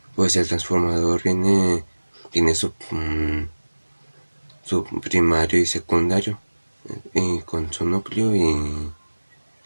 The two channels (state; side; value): inverted; both; correlation -1.00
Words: pues el transformador tiene su primario y secundario, y con su núcleo